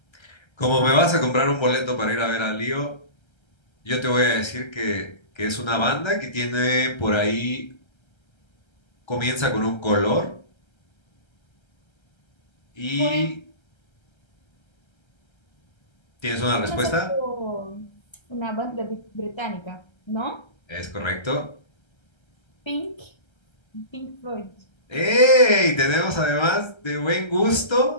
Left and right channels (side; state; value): right; late; 1.3 ms